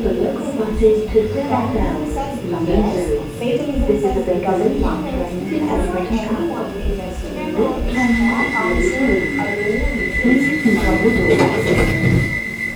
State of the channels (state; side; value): identical; both; correlation 1.00